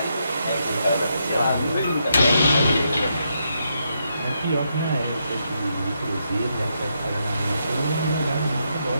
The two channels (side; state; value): both; inverted; correlation -0.80